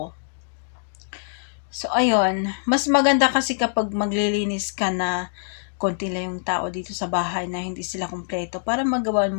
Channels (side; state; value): right; silent; digital silence